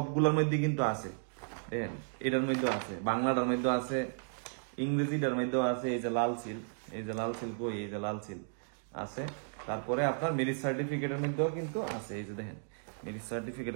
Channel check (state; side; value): silent; left; digital silence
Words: মধ্যে কিন্তু আছে, দেখেন এটার মধ্যে আছে, বাংলাটার মধ্যে আছে, ইংরেজিটার মধ্যেও আছে। এই যে লাল সিল, এই যে লাল সিল কই, এই যে লাল সিল আছে। তারপরে আপনার ম্যারেজ সার্টিফিকেটের মধ্যেও কিন্তু আছে, এই যে দেখেন ম্যারেজ